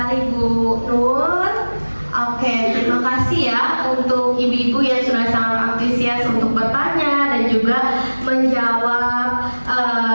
Bu Nur. Oke, terima kasih ya untuk ibu-ibu yang sudah sangat antusias untuk bertanya dan juga menjawab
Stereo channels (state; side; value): inverted; both; correlation -1.00